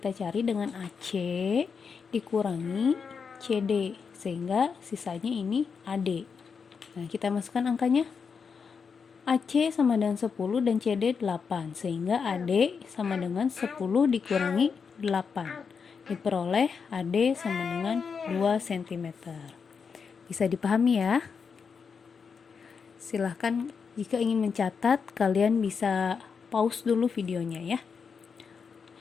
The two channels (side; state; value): right; quieter; 5.9 dB